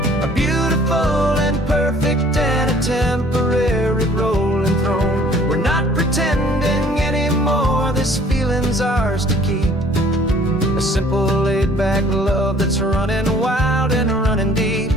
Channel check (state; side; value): normal; both; correlation 0.55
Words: a beautiful and perfect and a temporary rolling throne. We're not pretending anymore, this feeling's ours to keep, a simple laid-back love that's running wild and running deep.